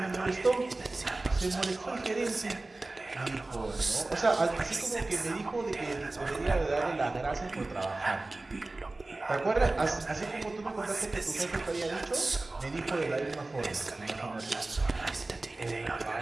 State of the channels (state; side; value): quieter; left; 3.1 dB